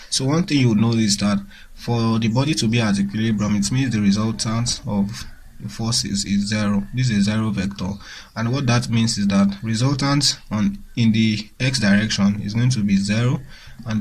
So one thing you would know is that for the body to be at equilibrium, it means the resultant of the forces is 0. This is a 0 vector, and what that means is that resultant in the x direction is going to be 0, and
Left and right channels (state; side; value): identical; both; correlation 1.00